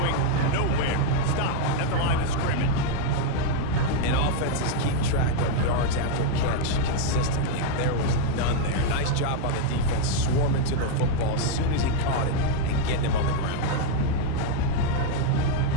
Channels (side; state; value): both; different; correlation 0.00